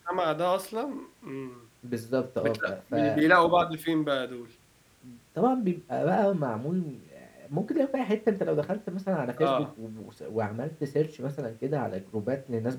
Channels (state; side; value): identical; both; correlation 1.00